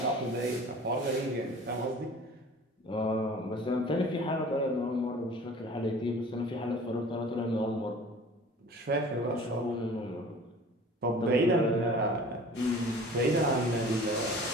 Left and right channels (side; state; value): both; normal; correlation 0.44